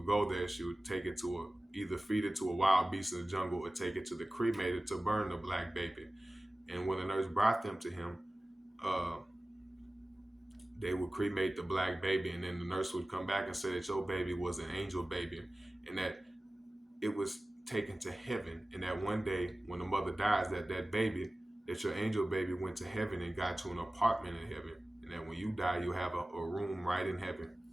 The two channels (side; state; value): both; normal; correlation 0.97